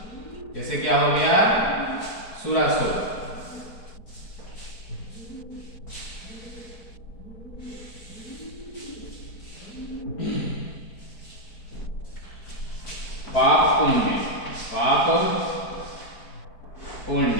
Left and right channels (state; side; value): late; right; 4.5 ms